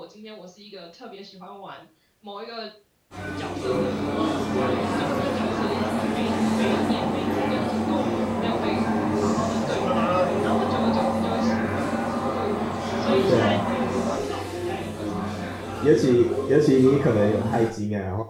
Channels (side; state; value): both; identical; correlation 1.00